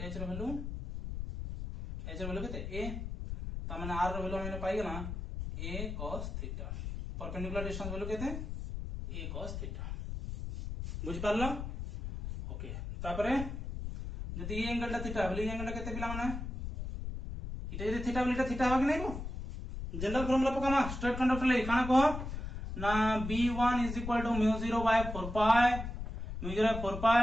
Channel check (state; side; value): noise; left; rumble, 6 dB below the sound